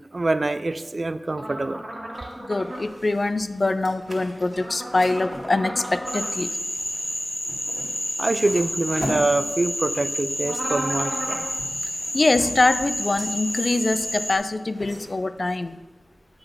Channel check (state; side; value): normal; both; correlation 0.96